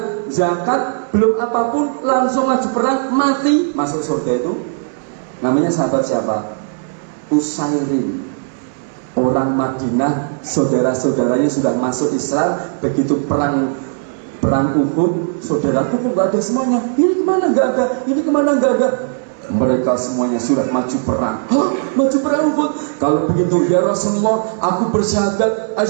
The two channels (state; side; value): silent; left; digital silence